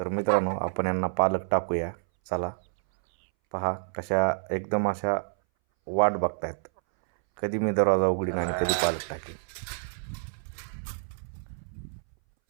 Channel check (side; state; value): left; silent; 59 dB below the other